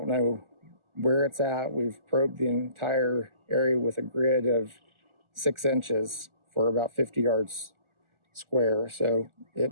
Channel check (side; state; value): left; late; 1.4 ms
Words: know where it's at. We've probed the entire area with a grid of 6 inches for about 50 yards square, so it